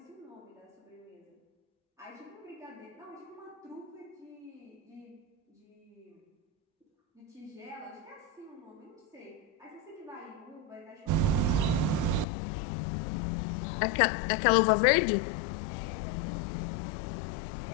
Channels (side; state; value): right; drops out; at 12.2 s